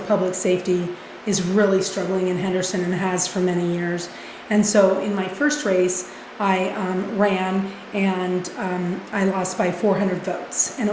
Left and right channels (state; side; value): identical; both; correlation 1.00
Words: safety is really struggling in Henderson and has for many years. And so in my first race, I ran and I lost by 400 votes, and